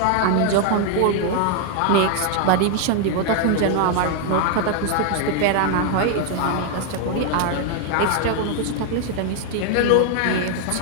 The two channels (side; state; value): both; different; correlation 0.00